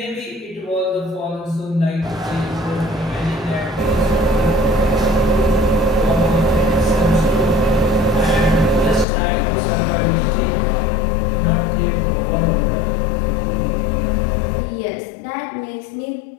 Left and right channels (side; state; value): right; drops out; at 9.1 s